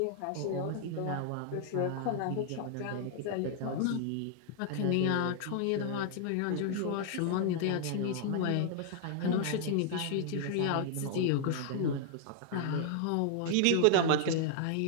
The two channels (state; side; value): different; both; correlation 0.00